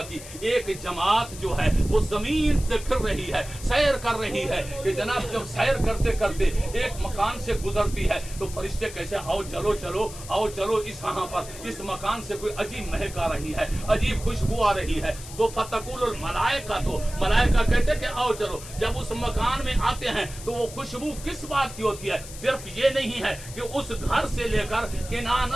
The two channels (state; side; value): noise; left; hiss, 14 dB below the sound